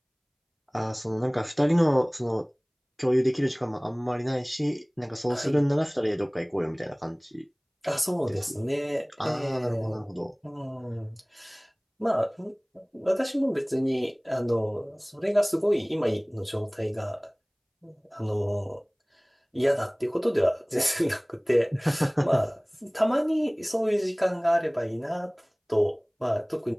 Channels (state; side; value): identical; both; correlation 1.00